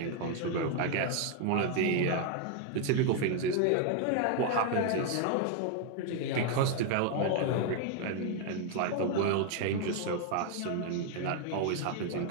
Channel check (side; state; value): both; different; correlation 0.00